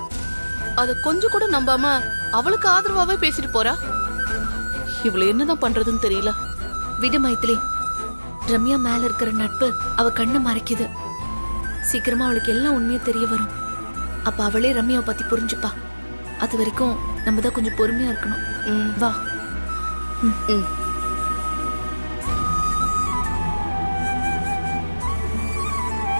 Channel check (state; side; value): inverted; both; correlation -1.00